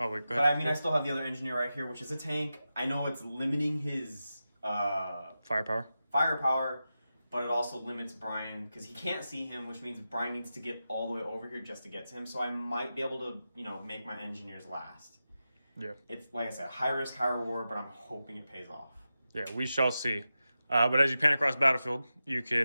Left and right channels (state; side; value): inverted; both; correlation -0.92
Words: wait, go ahead. But I mean, I still have the other engineer right here, which is a tank. I know it's limiting his Firepower. firepower, but it also limits Brian because he can't see him, which means Brian needs to get all the way over here just to get to him. So I might be able to, make my engineers last. Yeah. It's, like I said, high risk, high reward, but I'm hoping it pays off. Yeah, we shall see. But as you pan across the battlefield, you